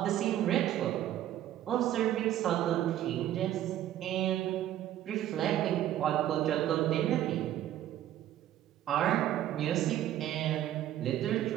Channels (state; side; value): quieter; left; 12.3 dB